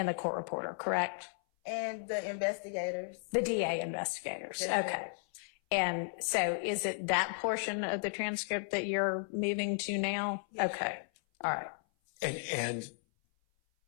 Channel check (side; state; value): right; silent; 55 dB below the other